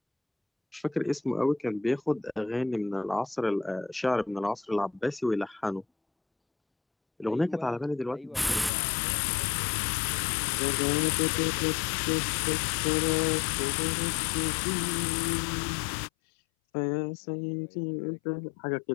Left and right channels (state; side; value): drops out; right; at 8.7 s